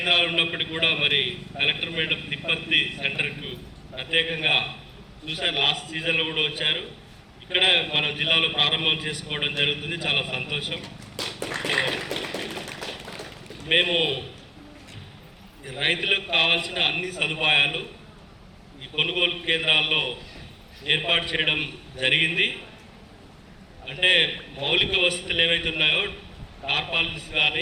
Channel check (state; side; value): identical; both; correlation 1.00